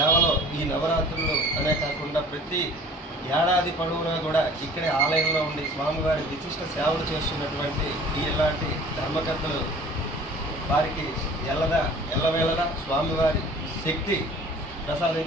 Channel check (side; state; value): both; normal; correlation 0.47